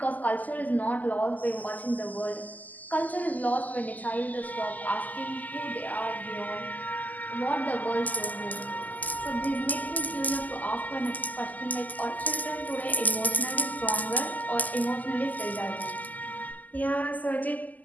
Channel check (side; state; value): right; late; 0.080 ms